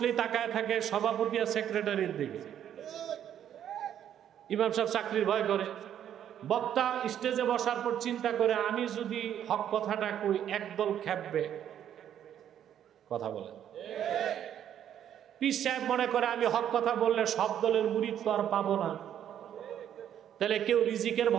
তাকায় থাকে সভাপতি আর সেক্রেটারির দিকে। ইমাম সাহেব চাকরির ভয় করে। বক্তা স্টেজে বসার পর চিন্তা করে, আমি যদি হক কথাটা কই একদল খেপবে, কথা বলে। পীর সাহেব মনে করে আমি হক কথা বললে সব দলের মুরিদ তো আর পাবো না। তাহলে কেউ রিজিকের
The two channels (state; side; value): quieter; left; 10.1 dB